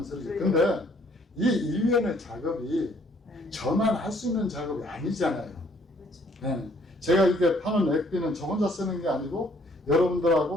소리지. 근데 이 일련의 작업이 저만 할 수 있는 작업이 아니잖아요. 그렇죠. 네. 제가 이렇게 파는 액비는 저 혼자 쓰는 게 아니고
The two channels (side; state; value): both; normal; correlation 0.63